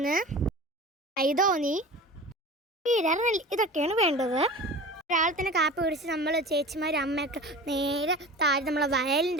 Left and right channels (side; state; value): both; normal; correlation 0.36